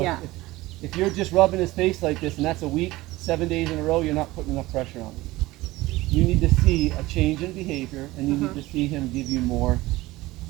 yeah. if you're just rubbing his face like this and that's a week, 7 days in a row, you're not putting enough pressure on him. You need to see a change in behavior, and you need to see him give you more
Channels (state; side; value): quieter; left; 18.9 dB